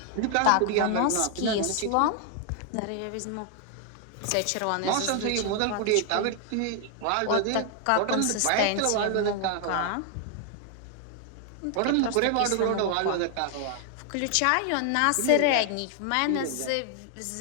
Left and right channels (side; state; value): both; different; correlation 0.00